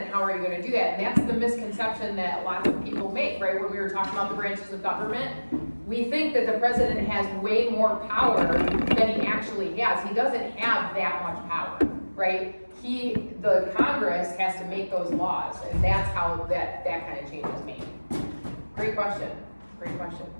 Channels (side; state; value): both; inverted; correlation -1.00